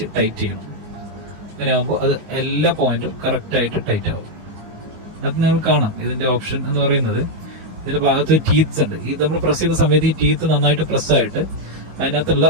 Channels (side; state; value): left; late; 19 ms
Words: ടൈറ്റ് ചെയ്യണം. അങ്ങനെയാകുമ്പോൾ അത് എല്ലാ പോയിന്റും കറക്റ്റായിട്ട് ടൈറ്റ് ആവും. അത് നിങ്ങൾ കാണാം. ഇതിന്റെ ഓപ്ഷൻ എന്ന് പറയുന്നത്, ഇതിന്റെ ഭാഗത്ത് ടീത്ത്സ് ഉണ്ട്. ഈ നമ്മൾ പ്രസ് ചെയ്യുന്ന സമയത്ത് ഈ ടീത്ത് നന്നായിട്ട് പ്രസ്സായിട്ട് അതിനകത്തുള്ള